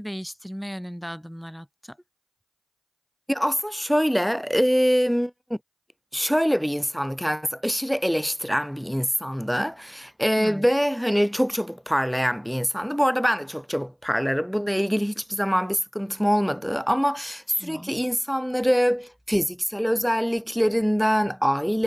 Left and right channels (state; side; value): identical; both; correlation 1.00